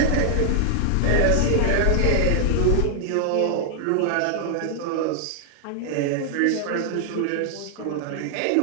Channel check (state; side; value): different; both; correlation -0.01